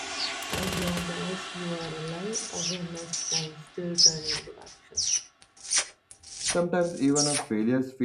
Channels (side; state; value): both; identical; correlation 1.00